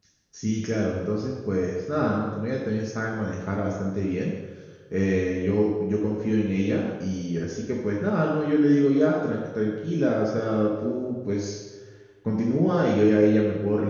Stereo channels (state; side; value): identical; both; correlation 1.00